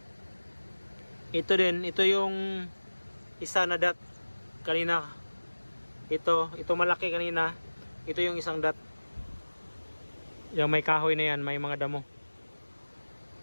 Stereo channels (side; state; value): both; inverted; correlation -1.00